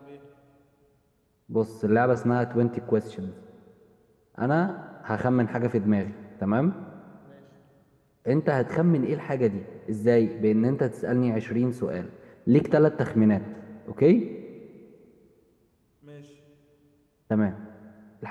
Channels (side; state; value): both; identical; correlation 1.00